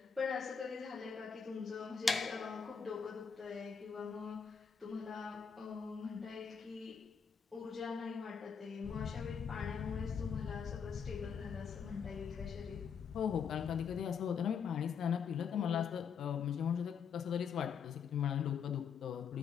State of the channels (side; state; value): right; quieter; 6.5 dB